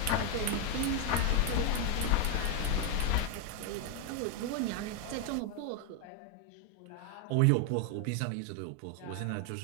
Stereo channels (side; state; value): both; different; correlation 0.01